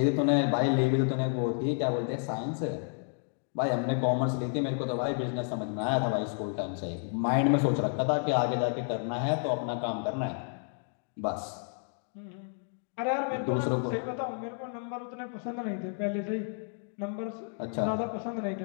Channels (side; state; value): right; silent; 57 dB below the other